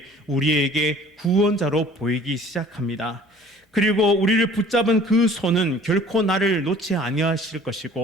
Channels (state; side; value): normal; both; correlation 0.50